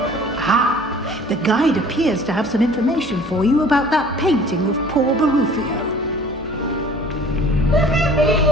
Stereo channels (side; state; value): both; normal; correlation 0.49